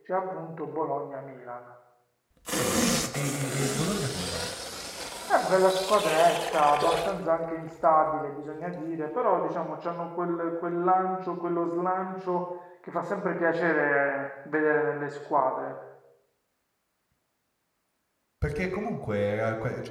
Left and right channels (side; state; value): both; identical; correlation 1.00